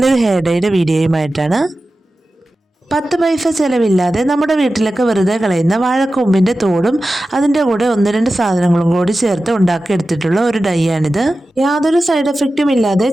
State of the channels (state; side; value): normal; both; correlation 0.94